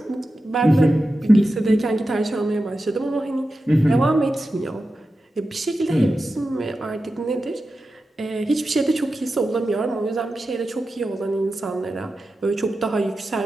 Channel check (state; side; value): normal; both; correlation 0.92